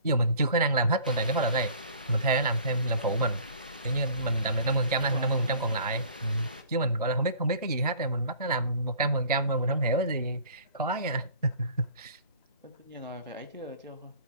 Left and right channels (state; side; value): inverted; both; correlation -0.49